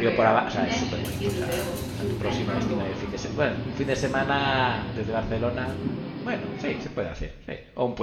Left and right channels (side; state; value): both; identical; correlation 1.00